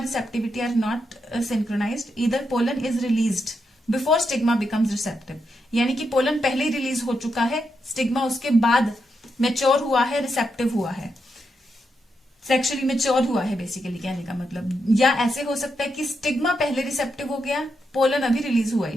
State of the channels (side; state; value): both; normal; correlation 0.83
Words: are not synchronized. Either pollen is released before stigma becomes receptive, यानी कि पोलन पहले ही रिलीज हो चुका है, स्टिग्मा उसके बाद मेच्योर हुआ है, रिसेप्टिव हुआ है, सेक्सुअली मेच्योर हुआ है बेसिकली कहने का मतलब। या ऐसे हो सकता है कि स्टिग्मा पहले रिसेप्टिव हो गया, पोलन अभी रिलीज हुआ ही